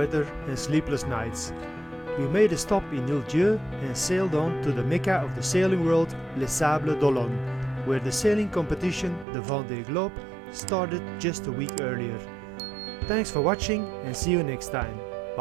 and sleepless nights. We made a stop in Île-Dieu and sailed on to the Mecca of the sailing world, Les Sables d'Olonne, where the sailing competition, the Vendée Globe, started just a week earlier. Thanks for watching and see you next time.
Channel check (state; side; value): drops out; left; at 9.2 s